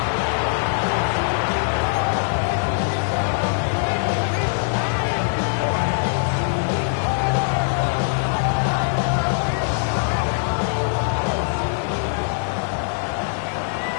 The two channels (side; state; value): right; silent; digital silence